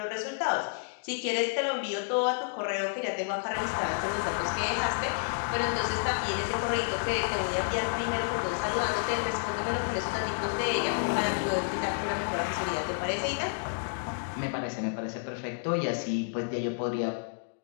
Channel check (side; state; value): right; silent; digital silence